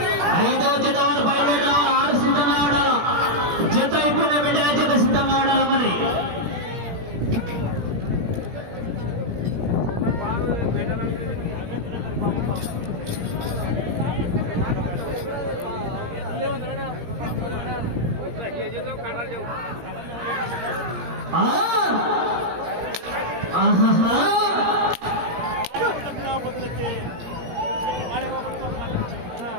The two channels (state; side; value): late; left; 17 ms